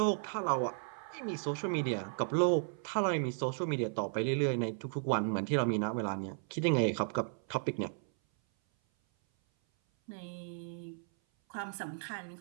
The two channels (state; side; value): silent; left; 55 dB below the other